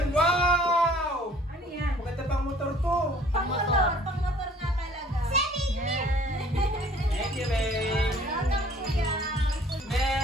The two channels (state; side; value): normal; both; correlation 0.55